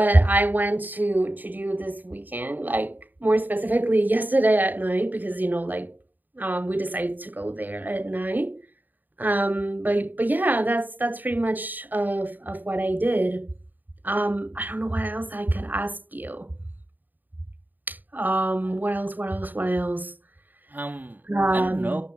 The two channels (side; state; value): left; late; 0.087 ms